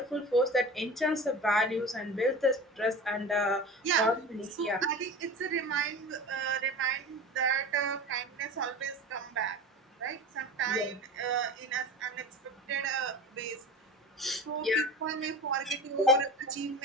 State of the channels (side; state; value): both; normal; correlation 0.33